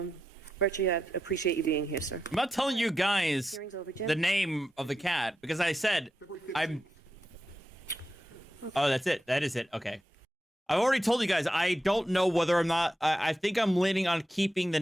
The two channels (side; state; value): both; normal; correlation 0.87